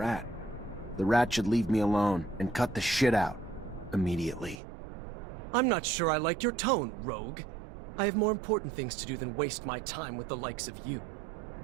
The rat should leave me alone and cut the shit out. Immediately. I'm not sure I like your tone, Rogue. I have more important things to do than waste my time with the likes of you.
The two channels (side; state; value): left; drops out; at 4.5 s